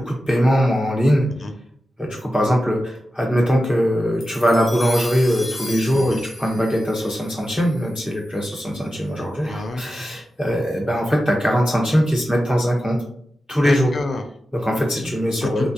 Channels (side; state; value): both; normal; correlation 0.92